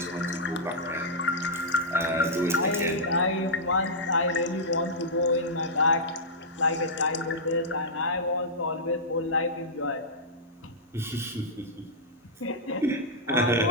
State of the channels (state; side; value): normal; both; correlation -0.11